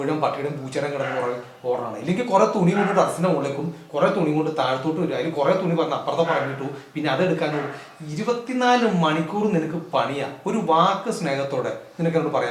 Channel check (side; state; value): both; identical; correlation 1.00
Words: പട്ടിയുടെയും പൂച്ചയുടെയും കിടന്ന് ഓടണം, ഇല്ലെങ്കിൽ കുറെ തുണി കൊണ്ട് ടെറസിന്റെ മുകളിലേക്കും കുറെ തുണി കൊണ്ട് താഴത്തോട്ട് വരും. അതിൽ കുറെ തുണി പറഞ്ഞ് അപ്പുറത്തെ പറഞ്ഞിട്ടു പിന്നെ അതെടുക്കാനും 24 മണിക്കൂർ നിനക്ക് പണിയാ. ഒരു വാക്ക് സ്നേഹത്തോടെ നിനക്ക് എന്നോട്